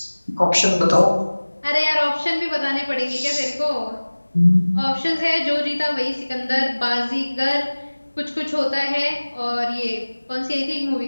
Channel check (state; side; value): inverted; both; correlation -1.00